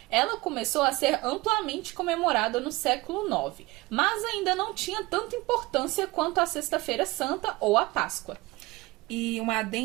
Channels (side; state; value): left; quieter; 21.5 dB